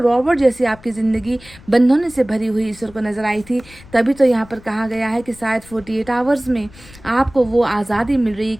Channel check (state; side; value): noise; left; rumble, 22 dB below the sound